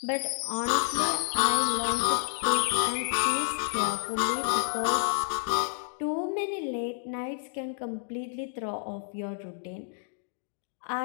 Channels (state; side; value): silent; right; digital silence